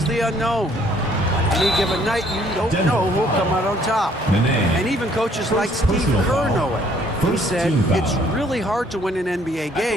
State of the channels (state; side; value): normal; both; correlation 0.62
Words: the unknown. Any given night, you don't know who'll come out on top. And even coaches like Steve Kerr know it. He said it's really hard to win an NBA